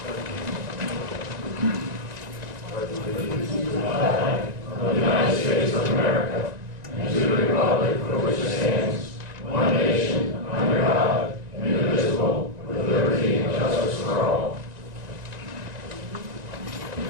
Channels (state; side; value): late; left; 1.9 ms